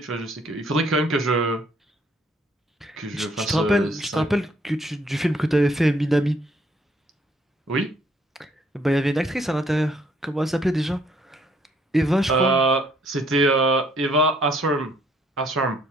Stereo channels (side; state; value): both; normal; correlation 0.66